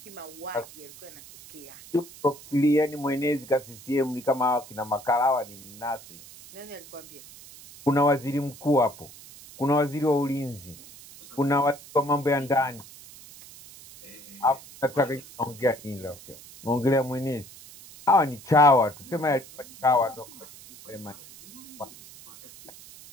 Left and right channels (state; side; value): noise; right; hiss, 19 dB below the sound